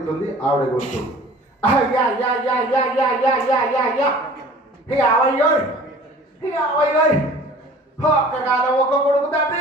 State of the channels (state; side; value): normal; both; correlation 0.46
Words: ఆవిడ గొంతు. ఒక్కగానే ఒక కొడుకు